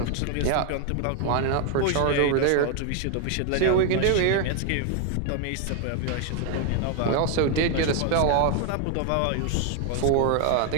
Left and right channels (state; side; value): different; both; correlation 0.00